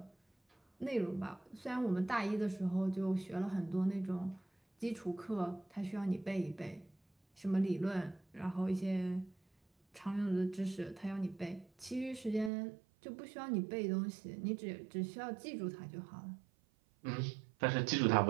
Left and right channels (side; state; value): left; drops out; at 12.5 s